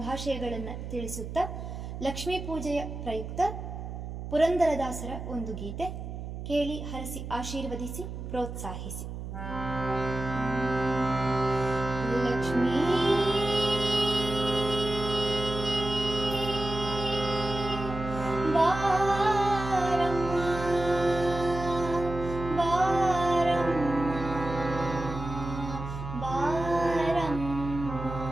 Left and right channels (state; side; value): noise; right; hum, 8 dB below the sound